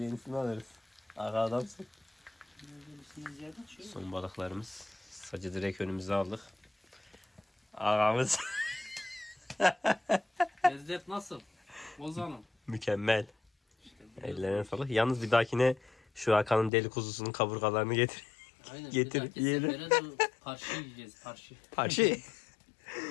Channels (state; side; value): drops out; right; at 16.7 s